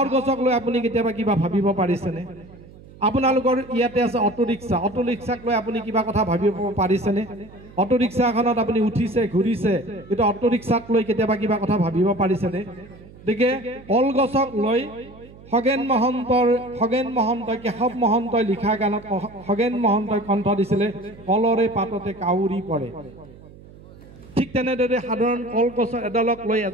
গছক লৈ আপুনি কেতিয়াবা কিবা ভাবিব পাৰিছেনে আপোনালোকৰ ইয়াতে আছে অটো ৰিক্সাক লৈ আপুনি কিবা কথা ভাবিব পাৰিছেনে অটো ৰিক্সাখনত আপুনি উঠিছে ঘূৰিছে কিন্তু অটো ৰিক্সাক লৈ কেতিয়াবা কিবা কথা ভাবিব পাৰিছেনে গতিকে কলগছক লৈ খগেন মহন্তই কেশৱ মহন্তই লিখা গানত খগেন মহন্তই কণ্ঠ দিছিলে কলৰে পাততে কাউৰী পৰে ঠিক তেনেদৰে সাধাৰণ কলগছ এডালক লৈ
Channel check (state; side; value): noise; right; hum, 21 dB below the sound